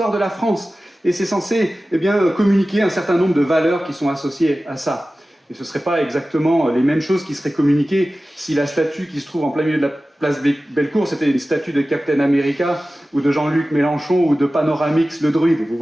de la France. Et c'est censé communiquer un certain nombre de valeurs qui sont associées à ça. Et ce ne seraient pas exactement les mêmes choses qui seraient communiquées si la statue qui se trouve en plein milieu de la place Bellecour, c'était une statue de Captain America, ou de Jean-Luc Mélenchon, ou de Panoramix le druide, vous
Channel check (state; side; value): normal; both; correlation 0.96